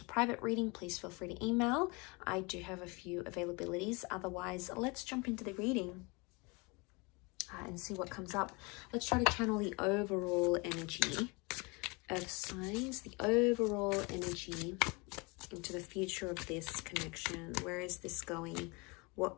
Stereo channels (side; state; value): right; quieter; 28.1 dB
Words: private reading, please feel free to email. I do have a few availabilities. Otherwise, let's jump into the reading and see what comes up. Let's try to channel the overall energy of signs, the overall energy into the future of this connection. Where is this going? What